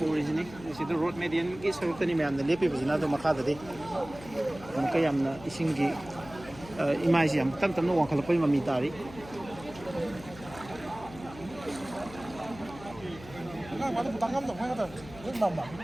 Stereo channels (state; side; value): noise; left; hum, 17 dB below the sound